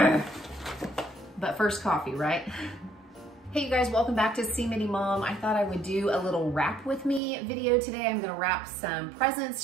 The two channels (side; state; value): left; drops out; at 7.2 s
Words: But first coffee, right? Hey you guys, welcome back to See Mini Mom. I thought I would do a little wrap with me video today. I'm gonna wrap some presents,